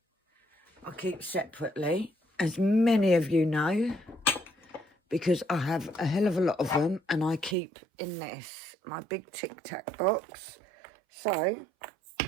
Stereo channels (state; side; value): drops out; left; at 7.6 s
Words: I keep separately, as many of you know, because I have a hell of a lot of them, and I keep in this, my big Tic Tac box. So,